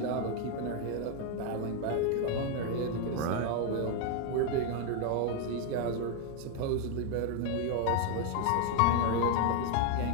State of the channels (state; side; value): different; both; correlation 0.01